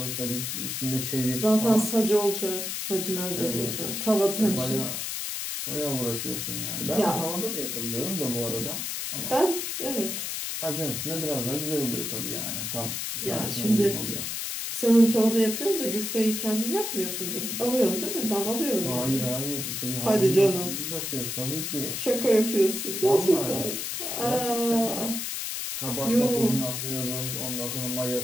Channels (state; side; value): noise; left; hiss, 3 dB below the sound